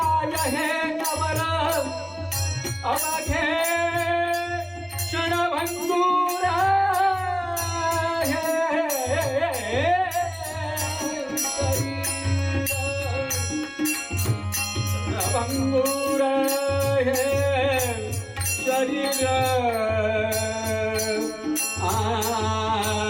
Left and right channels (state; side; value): identical; both; correlation 1.00